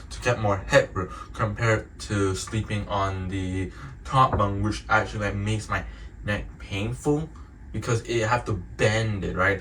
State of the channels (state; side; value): identical; both; correlation 1.00